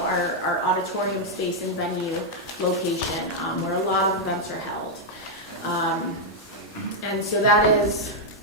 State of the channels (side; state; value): both; normal; correlation -0.02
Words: our auditorium space and venue location where a lot of events are held. And so that is